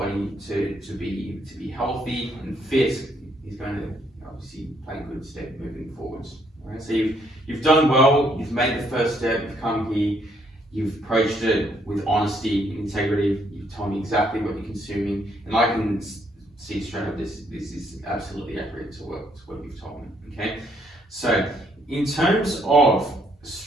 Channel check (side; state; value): both; normal; correlation 0.70